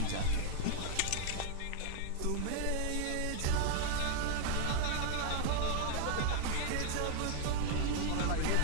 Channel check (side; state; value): both; different; correlation 0.00